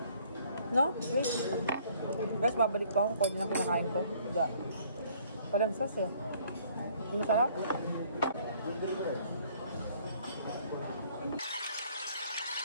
No? Wait. Guys, babalik pa ako. Ang koni na kinakain ko. Hindi. Walang sauce eh. Hindi masarap.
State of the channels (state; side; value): inverted; both; correlation -0.61